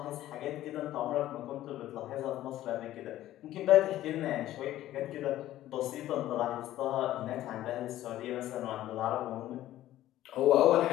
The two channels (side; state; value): right; quieter; 13.9 dB